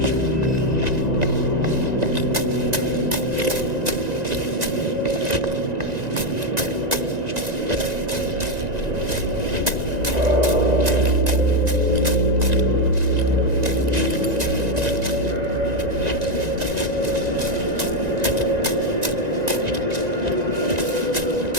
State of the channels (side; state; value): left; late; 1.9 ms